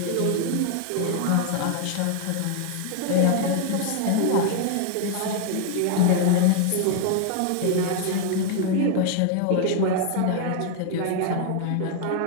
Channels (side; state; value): both; different; correlation 0.00